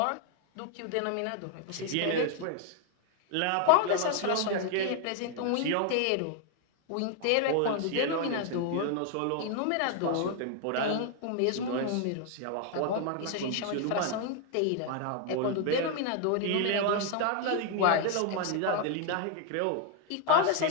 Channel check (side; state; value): both; different; correlation 0.00